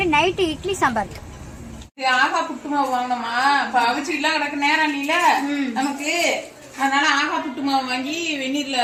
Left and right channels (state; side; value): identical; both; correlation 1.00